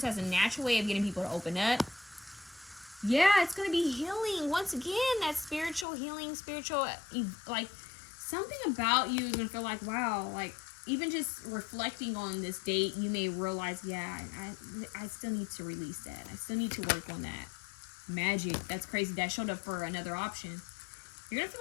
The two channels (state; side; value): drops out; right; at 5.9 s